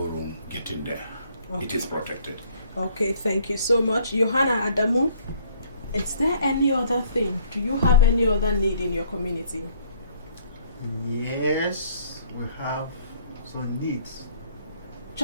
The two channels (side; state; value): both; inverted; correlation -0.60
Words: room getting there. Okay. It is protected. Okay, thank you so much. Johanna Adamu, is there any other thing? Do you have any other need in your community? Yes, we have some needs.